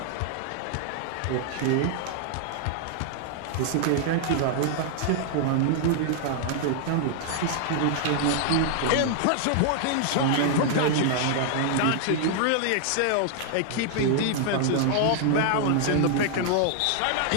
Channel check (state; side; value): different; both; correlation -0.01